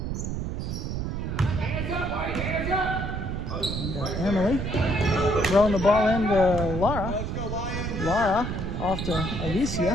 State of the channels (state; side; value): noise; right; rumble, 3 dB below the sound